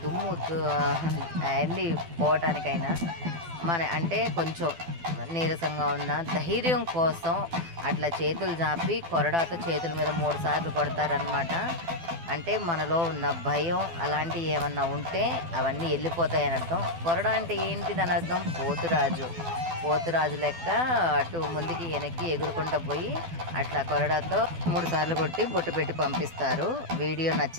దుమ్ము అన్నీ పోవటానికైనా అంటే కొంచెం నీరసంగా ఉన్న ధైర్యం కోసం అట్లా చేతులు జాపి కొరడాతో చేతుల మీద 3 సార్లు కొడతారనమాట. అంటే మనలో ఉన్న భయం అలాంటివి ఏమన్నా ఉంటే అవన్నీ వెళ్ళిపోతాయని అర్థం. కొరడా అంటే ఏంటిదని అర్థం? పోతురాజు లెక్క అటు ముందుకి వెనక్కి ఎగురుకుంటూ పోయి అట్లా కొరడాతో 3 సార్లు కొట్టి బొట్టు పెట్టి పంపిస్తారు. వీడియో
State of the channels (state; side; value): late; left; 12 ms